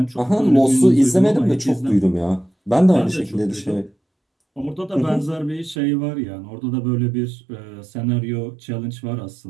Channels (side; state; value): left; drops out; at 5.8 s